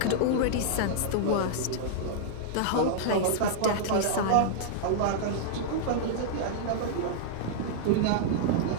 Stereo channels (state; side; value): different; both; correlation -0.01